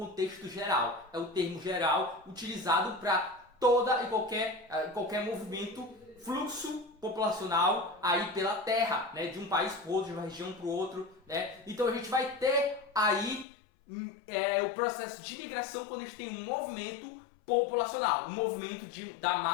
geral, é o termo geral utilizado para toda e qualquer movimento, fluxo populacional aí pela terra, né, de um país para o outro, de uma região para o outro, né? Então a gente vai ter aí o processo de migração quando a gente tem um movimento populacional, um movimento da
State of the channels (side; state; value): right; drops out; at 13.5 s